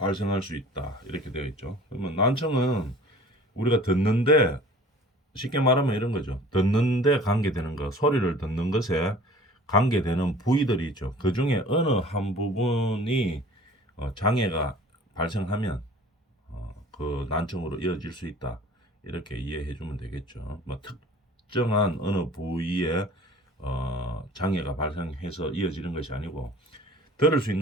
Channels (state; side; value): normal; both; correlation 0.46